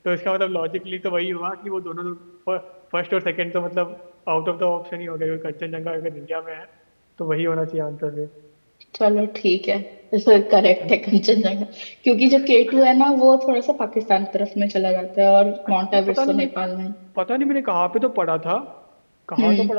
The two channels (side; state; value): both; inverted; correlation -1.00